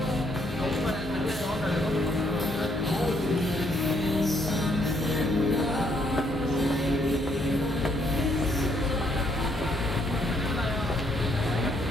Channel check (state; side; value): normal; both; correlation 0.71